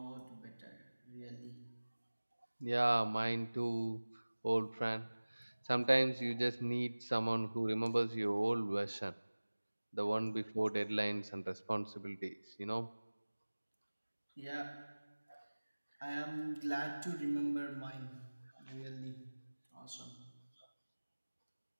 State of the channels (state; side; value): inverted; both; correlation -1.00